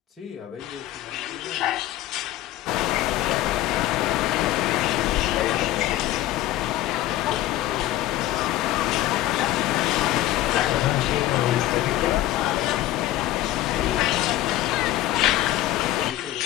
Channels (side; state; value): right; quieter; 14.8 dB